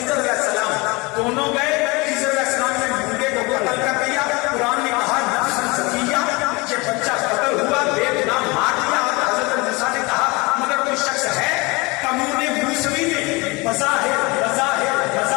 علیہ السلام دونوں گئے, خضر علیہ السلام نے ڈھونڈے کو قتل کر دیا. قرآن نے کہا نفس زکیہ, یہ بچہ قتل ہوا, بے گناہ مار دیا. حضرت موسیٰ نے کہا مگر کوئی شخص ہے قانون موسوی میں بظاہر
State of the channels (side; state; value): right; quieter; 25.5 dB